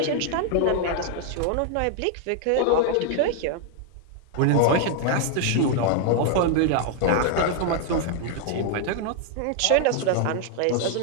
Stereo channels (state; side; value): different; both; correlation 0.00